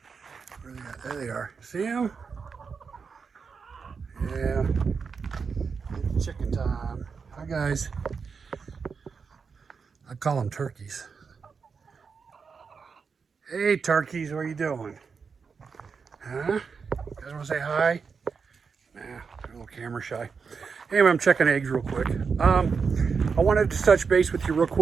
Where are they at? There they are. See them? Yeah. It's chicken time. Hi guys. I call them turkeys. Hey turkeys, what are you doing? Huh? You guys want to say hi? Nah, they're a little camera shy. Anyway, I'm checking eggs real quick. I wanted to touch base with you real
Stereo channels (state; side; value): quieter; left; 5.5 dB